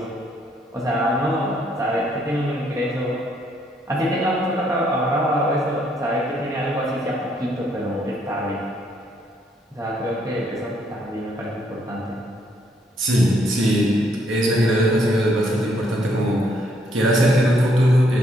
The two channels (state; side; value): normal; both; correlation 0.70